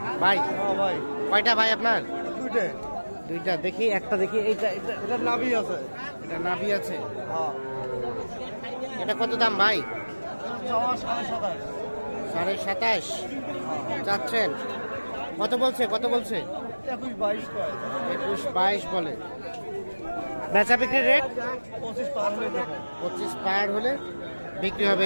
ভাই কয়টা ভাই আপনার? দুইটা। দেখি একটা, দেখি এইটা। এটা নাভি আছে, এটা নাভি আছে। এটা কত দাম ভাই? 27.5 চাচ্ছেন? কত বলছে? 21-22 বলে। বেচা বিক্রির রেট 25 পার হলে বিক্রি হবে।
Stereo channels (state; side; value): inverted; both; correlation -1.00